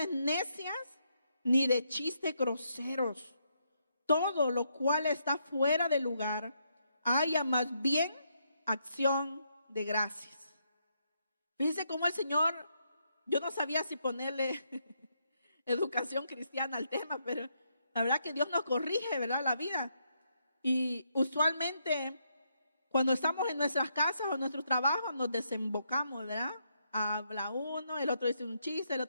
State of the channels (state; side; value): inverted; both; correlation -0.78